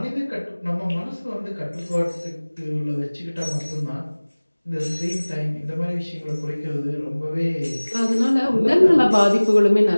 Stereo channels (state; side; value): inverted; both; correlation -1.00